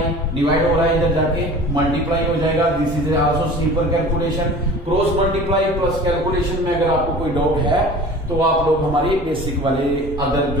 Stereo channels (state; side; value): normal; both; correlation 0.41